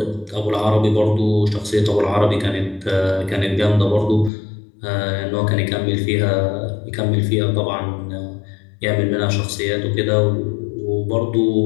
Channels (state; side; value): drops out; right; at 4.3 s